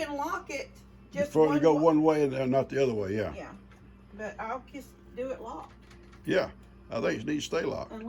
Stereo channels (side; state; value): both; identical; correlation 1.00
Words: lock it just before you go one way and not the other way, yeah. Yeah. But I'll just do it locked. Yeah. I think it needs to stay locked.